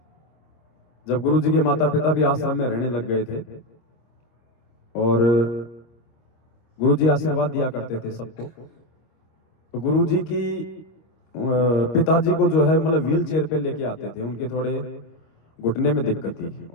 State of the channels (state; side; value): late; right; 25 ms